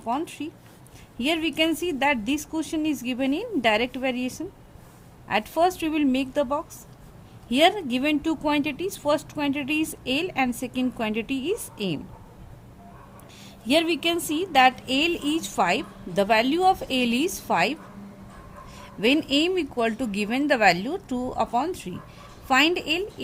3. Here we can see that this question is given in direct variation. At first we will make the box. Here given two quantities, first quantity is L and second quantity is M. Here we can see that L is 5, the value of L is 5 when M equal to given the value 2 upon 3. Find L,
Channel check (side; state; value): both; identical; correlation 1.00